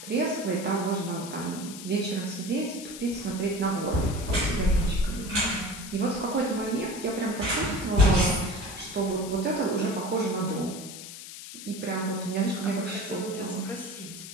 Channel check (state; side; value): noise; left; hiss, 12 dB below the sound